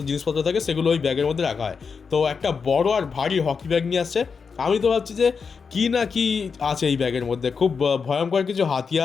জিনিসপত্র থাকে সেগুলো ওই ব্যাগের মধ্যে রাখা হয়। তো একটা বড় আর ভারী হকি ব্যাগ নিয়ে আসছে। আমি তো ভাবছি যে কী না কি আছে এই ব্যাগের মধ্যে, খুব ভয়ঙ্কর কিছু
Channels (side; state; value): right; quieter; 5.6 dB